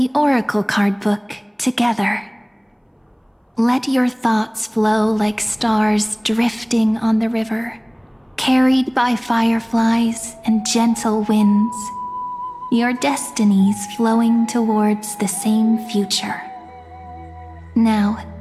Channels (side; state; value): both; identical; correlation 1.00